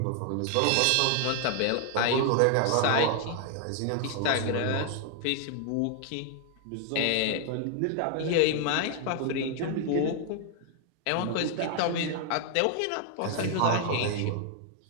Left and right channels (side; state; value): both; different; correlation 0.00